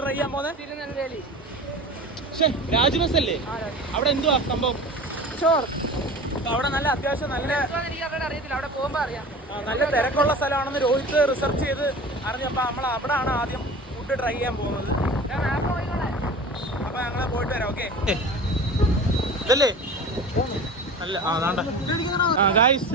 ട്രൈ ചെയ്യാൻ പോകുന്നത്? തിരുനെൽവേലി. രാജ്ബസ് അല്ലേ? അവിടെ എന്തുവാ സംഭവം? അവിടെ നല്ല അത്യാവശ്യം നല്ല അറിയത്തില്ല, അവിടെ പോകുമ്പോ അറിയാം. നല്ല തിരക്കുള്ള സ്ഥലമാണെന്ന് രോഹിത് റിസർച്ച് ചെയ്ത് അറിഞ്ഞപ്പോ നമ്മൾ അവിടെയാണ് ആദ്യം ഫുഡ് ട്രൈ ചെയ്യാൻ പോകുന്നത്. അപ്പൊ ഞങ്ങള് പോയിട്ട് വരാം. ഓക്കെ ഇതല്ലേ? അല്ല, ഗായ്സ്,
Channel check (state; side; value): normal; both; correlation 0.37